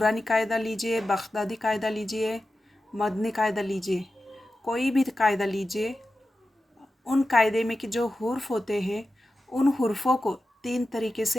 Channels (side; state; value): both; normal; correlation 0.93